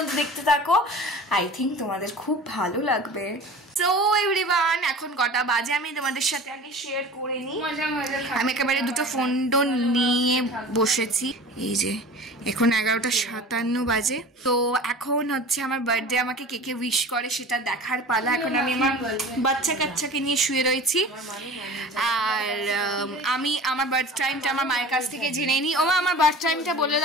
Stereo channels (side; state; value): both; normal; correlation 0.39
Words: দেখতে থাকো, আই থিঙ্ক তোমাদের খুব ভালো লাগবে। সো এভরিওয়ান, এখন কটা বাজে আমি তোমাদের সাথে আগে শেয়ার করে নিই। আমি একেবারে দুটো ফোন টোন নিয়ে বসেছি। এই যে এখন 11:57 বাজে। তো এখন হচ্ছে আমার বার্থডে, আমাকে কে কে উইশ করে সেটা দেখার পালা। এখন আমি আমার বাচ্চা কাচ্চাকে নিয়ে শুয়ে রয়েছি, আর আমি আমার বার্থ টাইমটা আমার মায়ের কাছ থেকে জেনে নিই। ওমা, আমার বার্থ টাইমটা বলে